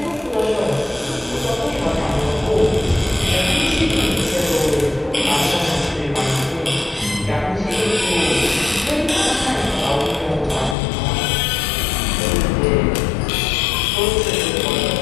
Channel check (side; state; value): right; drops out; at 10.8 s